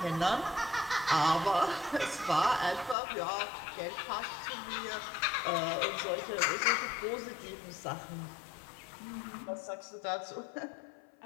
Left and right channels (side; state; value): right; drops out; at 3.0 s